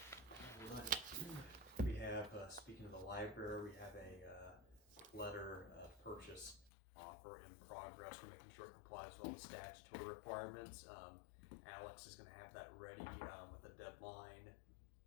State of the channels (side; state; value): right; drops out; at 6.7 s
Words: We have, speaking of the library, we have a letter of purchase offer in progress. We're making sure it complies with all the statutory requirements. Alex is gonna have that ready with a deadline